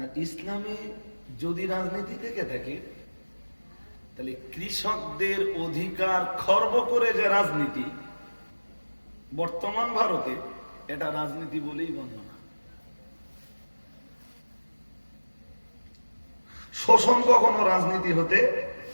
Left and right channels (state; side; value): inverted; both; correlation -1.00